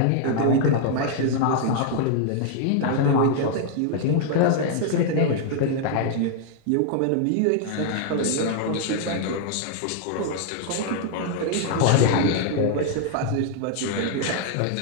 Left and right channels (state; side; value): different; both; correlation 0.00